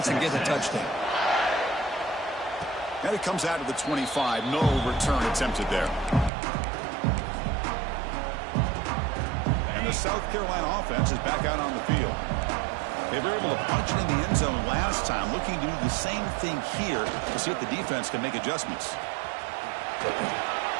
and get a touchdown. And it comes out to the 25. No return attempted there. And the South Carolina offense is back out on the field. They were able to punch it in the end zone last time, looking to do the same thing here to see if the defense can make adjustments.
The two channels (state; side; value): drops out; left; at 6.3 s